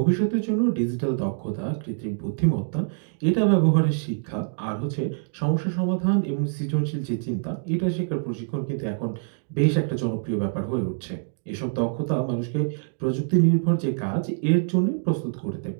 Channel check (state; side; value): silent; left; digital silence